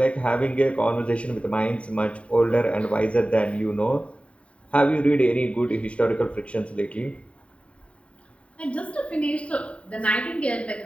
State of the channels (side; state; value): right; late; 0.062 ms